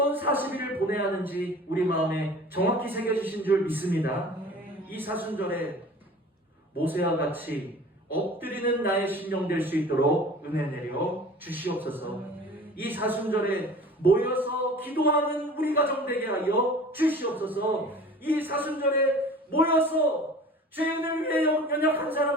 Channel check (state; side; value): normal; both; correlation 0.43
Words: 40일을 보내야 하는지 우리 마음에 정확히 새겨주신 줄 믿습니다. 이 사순절에 모세와 같이 엎드리는 나의 심령 될 수 있도록 은혜 내려 주시옵소서. 이 사순절에 모여서 기도하는 우리 가정 되게 하여 주시옵소서. 이 사순절에 모여서 죄인을 위해, 연약한